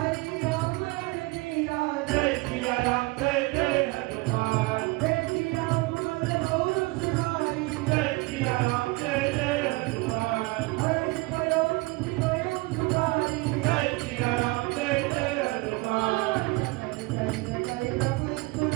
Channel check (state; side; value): quieter; left; 23.4 dB